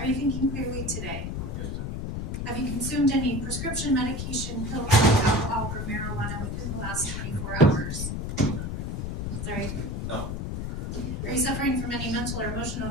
you thinking clearly today? Yes, ma'am. Have you consumed any prescription medication, pills, alcohol, or marijuana within the last 24 hours? Sorry. No. Are you suffering from any mental or emotional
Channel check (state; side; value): noise; left; rumble, 3 dB below the sound